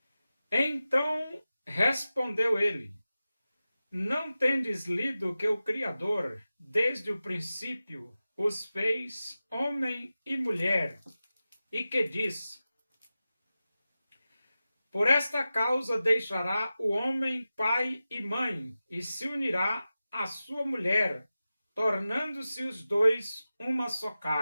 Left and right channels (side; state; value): both; inverted; correlation -0.94